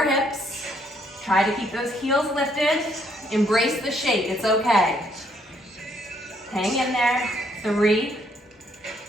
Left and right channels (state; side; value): normal; both; correlation 0.69